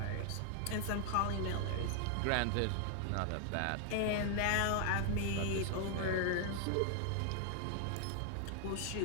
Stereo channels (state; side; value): different; both; correlation 0.00